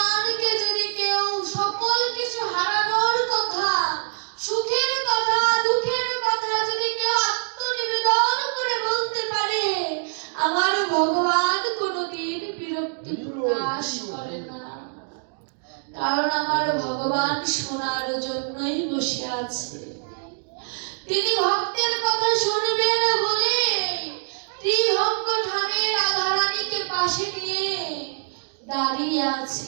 যদি কেউ সকল কিছু হারানোর কথা, সুখের কথা, দুঃখের কথা যদি কেউ আত্মনিবেদন করে বলতে পারে, আমার ভগবান কোনোদিন বিরক্তি প্রকাশ করে না। কারণ আমার ভগবান শোনার জন্যই বসে আছে। তিনি ভক্তের কথা শুনবেন বলে ত্রিভঙ্গ ধামে রাধারানীকে পাশে নিয়ে দাঁড়িয়ে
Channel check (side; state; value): left; silent; digital silence